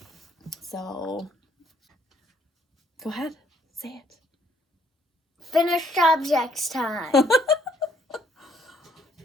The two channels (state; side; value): normal; both; correlation 0.67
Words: So, go ahead, say it. Finished objects time.